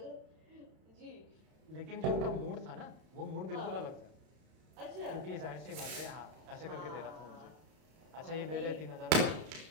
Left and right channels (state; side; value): late; left; 32 ms